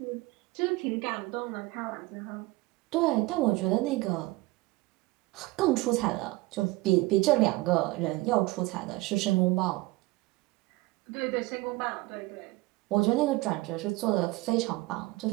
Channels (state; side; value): quieter; left; 21.1 dB